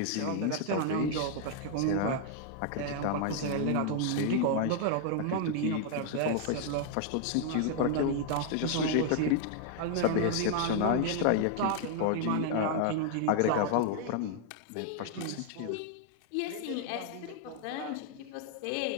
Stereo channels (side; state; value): both; different; correlation 0.00